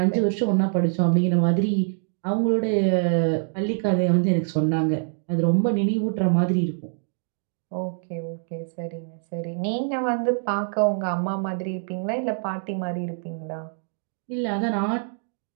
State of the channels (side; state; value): left; silent; 62 dB below the other